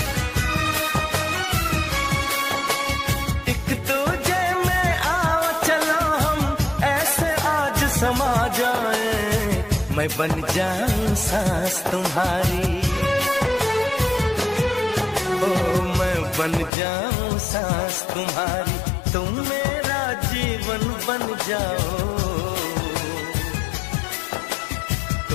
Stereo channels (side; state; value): right; drops out; at 16.7 s